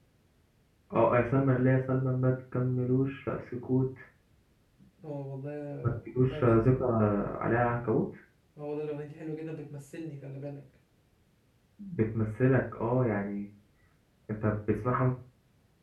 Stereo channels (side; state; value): both; identical; correlation 1.00